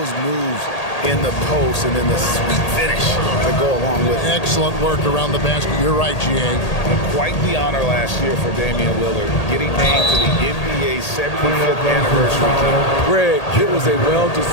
moves in the post and then the sweet finish to go along with it. Excellent work around the basket. You're right, G.A. Quite the honor last year for Damian Lillard, getting named to the NBA 75th anniversary team. Greg, it was a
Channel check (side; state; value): right; late; 1.8 ms